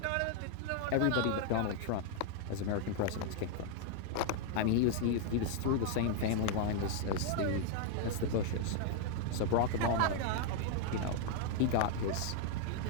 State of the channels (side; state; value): both; different; correlation 0.00